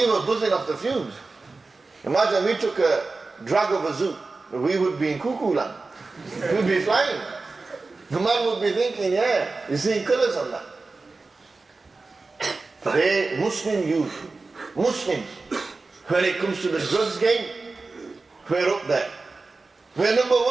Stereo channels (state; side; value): quieter; left; 3.7 dB